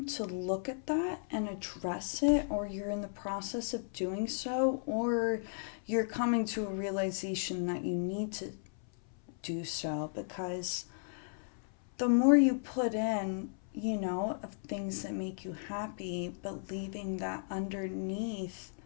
to look at that and address it, or you're in the process of doing so, or you're coming to a realization that you need to do so, because the more you put in, of things that make you happy, but leaving that underneath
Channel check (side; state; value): right; silent; 54 dB below the other